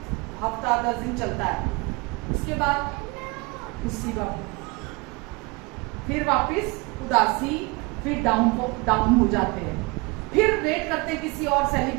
हफ्ता 10 दिन चलता है, उसके बाद उसी वक्त फिर वापस उदासी, फिर डाउन हो जाते हैं। फिर वेट करते हैं किसी और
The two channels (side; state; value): left; quieter; 26.6 dB